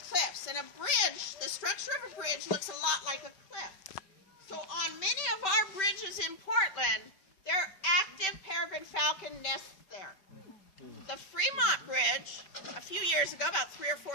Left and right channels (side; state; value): right; late; 5.1 ms